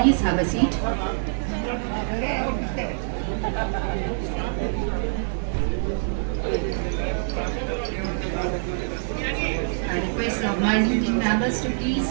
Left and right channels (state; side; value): silent; left; 59 dB below the other